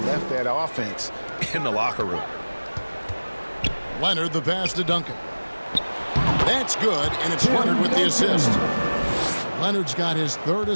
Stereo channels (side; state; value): both; inverted; correlation -1.00